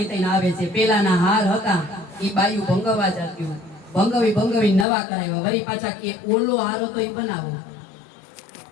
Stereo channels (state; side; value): drops out; right; at 4.9 s